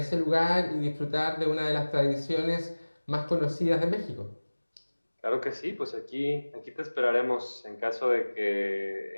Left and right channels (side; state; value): both; inverted; correlation -1.00